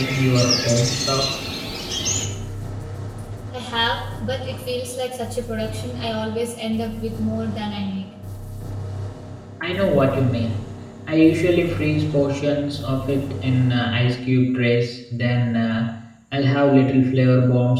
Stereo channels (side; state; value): both; identical; correlation 1.00